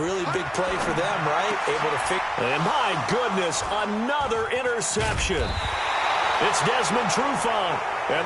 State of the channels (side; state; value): both; identical; correlation 1.00